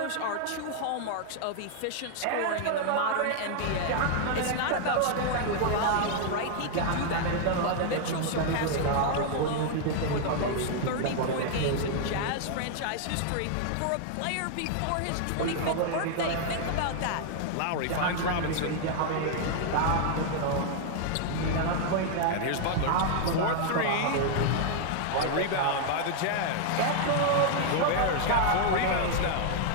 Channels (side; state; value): both; different; correlation 0.00